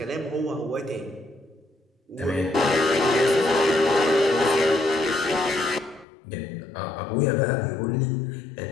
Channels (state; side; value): drops out; right; at 6.1 s